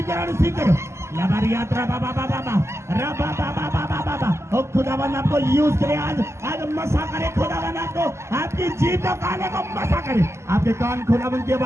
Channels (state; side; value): late; left; 0.13 ms